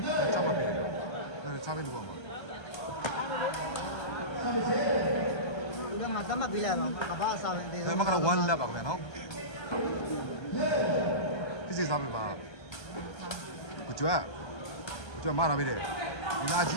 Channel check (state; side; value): late; right; 1.3 ms